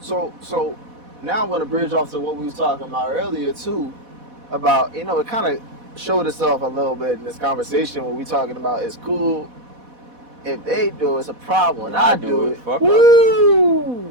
So now I'm gonna bridge off to what we was talking about earlier too, about it kind of showed itself a little bit in this conversation where we talking about it's cool if they do it's a problem when I do it. Fuck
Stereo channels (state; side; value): late; left; 4.1 ms